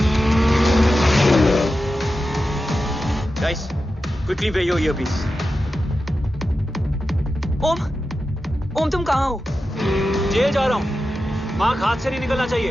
Guys, quickly wear your earpiece. ओम, तुम कहाँ हो? जेल जा रहा हूँ। मार्क हाथ से नहीं निकलना चाहिए।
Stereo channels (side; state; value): both; normal; correlation 0.91